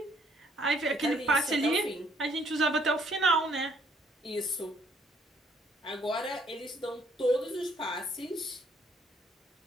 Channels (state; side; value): normal; both; correlation 0.65